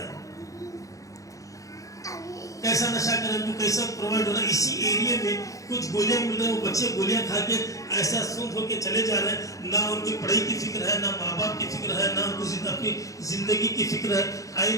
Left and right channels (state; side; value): late; right; 0.16 ms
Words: हैं, कैसा नशा कर रहे हैं, कैसा प्रोवाइड हो रहा है। इसी एरिया में कुछ गोलियां मिल रही है, वो बच्चे गोलियां खा के ऐसा सूंघ होके चले जा रहे हैं। ना उनकी पढ़ाई की फिक्र है, ना माँ बाप की फिक्र है, ना उनको अपनी जिंदगी की फिक्र है। आई